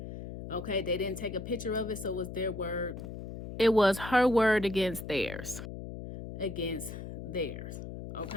Okay, they didn't take a picture of it, so it was their word. It was her word against theirs. Against theirs.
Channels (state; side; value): noise; left; hum, 9 dB below the sound